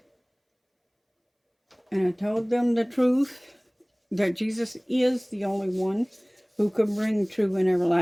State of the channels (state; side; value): identical; both; correlation 1.00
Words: and I told them the truth, that Jesus is the only one who can bring true and